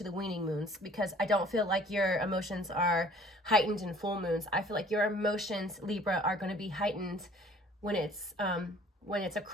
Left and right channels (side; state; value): both; normal; correlation 0.53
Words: the weaning moons, because I don't feel like your emotions are heightened in full moons. I feel like your emotions, Libra, are going to be heightened when it's a